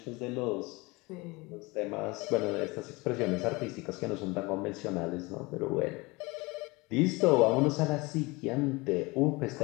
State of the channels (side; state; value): right; quieter; 24.5 dB